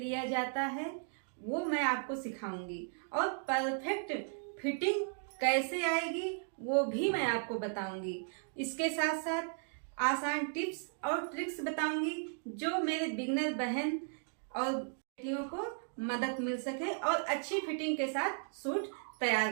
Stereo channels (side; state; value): left; silent; 54 dB below the other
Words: जाता है वो मैं आपको सिखाऊंगी और परफेक्ट फिटिंग कैसे आएगी वो भी मैं आपको बताऊंगी। इसके साथ साथ आसान टिप्स और ट्रिक्स बताऊंगी जो मेरे बिगनर बहन और बेटियों को मदद मिल सके और अच्छी फिटिंग के साथ सूट तैयार